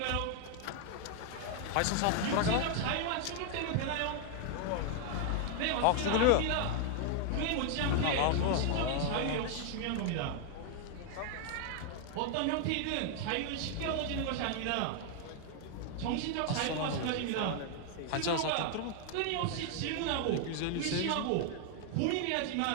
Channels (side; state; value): both; different; correlation 0.00